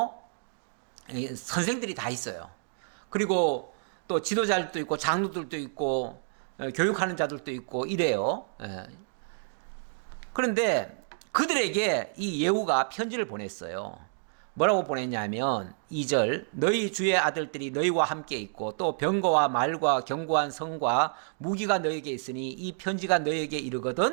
선생들이 다 있어요. 그리고 또 지도자들도 있고 장로들도 있고 교육하는 자들도 있고 이래요. 그런데 그들에게 이 예후가 편지를 보냈어요. 뭐라고 보냈냐면 2절 너희 주의 아들들이 너희와 함께 있고 또 병거와 말과 견고한 성과 무기가 너희에게 있으니 이 편지가 너희에게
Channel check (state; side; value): silent; left; digital silence